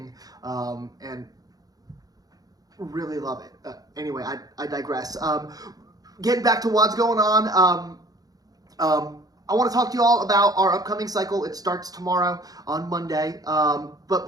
and really love it. Anyway, I digress. Getting back to what's going on. I want to talk to you all about our upcoming cycle. It starts tomorrow on Monday. But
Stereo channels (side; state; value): left; late; 0.18 ms